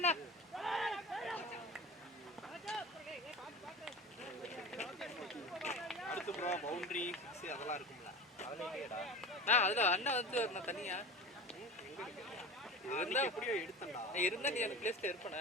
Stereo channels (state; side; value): normal; both; correlation 0.33